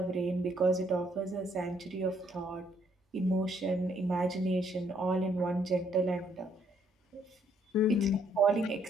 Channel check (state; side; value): normal; both; correlation 0.68